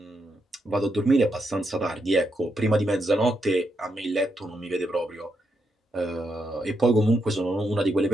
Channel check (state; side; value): normal; both; correlation 0.81